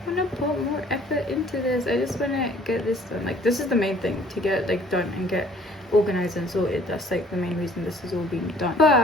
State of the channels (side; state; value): both; normal; correlation 0.57